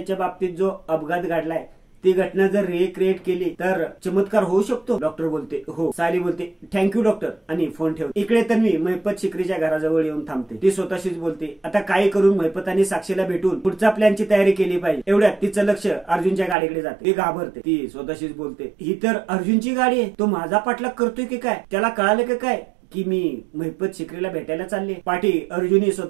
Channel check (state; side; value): drops out; left; at 16.6 s